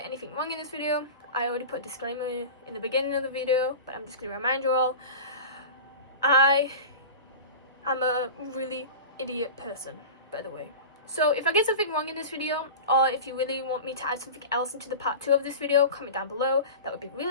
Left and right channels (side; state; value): both; inverted; correlation -0.31